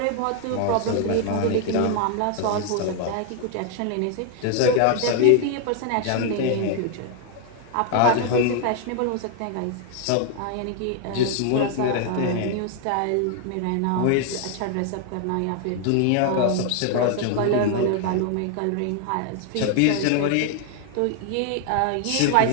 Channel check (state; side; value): different; both; correlation 0.00